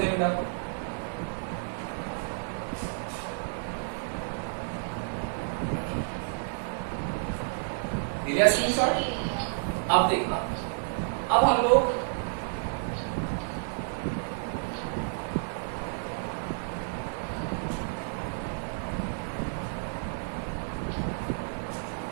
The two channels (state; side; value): silent; left; digital silence